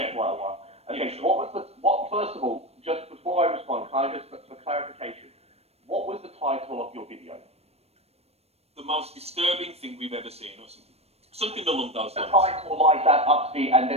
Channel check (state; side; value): late; left; 0.30 ms